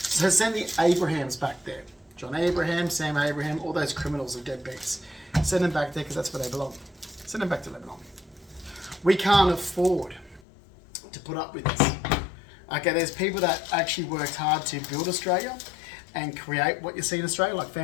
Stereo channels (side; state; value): right; drops out; at 10.4 s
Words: send the Abrahams back there. John Abraham, Sam Abraham, all those criminals are deadbeats. Send them back there because that's where they belong. Send Send them back to Lebanon. We can't afford to put up with this. Okay, there's people that actually worked hard to build Australia and create what you see in Australia, like